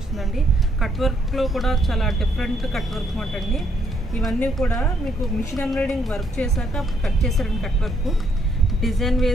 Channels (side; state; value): both; normal; correlation 0.72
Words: కట్ వర్క్లో కూడా చాలా డిఫరెంట్ కట్ వర్క్ మాట అండి. ఇవన్నీ కూడా మీకు మిషన్ ఎంబ్రాయిడింగ్ వర్క్ చేశాక కట్ చేశారండి. కట్ వర్క్ డిజైన్